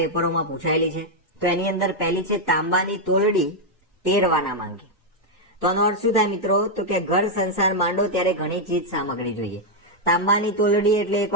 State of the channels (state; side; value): normal; both; correlation -0.01